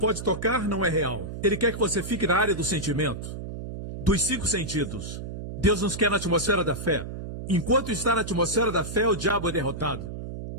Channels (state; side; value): noise; right; hum, 8 dB below the sound